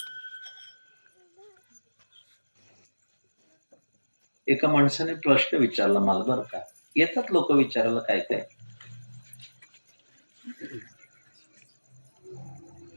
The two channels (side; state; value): both; inverted; correlation -1.00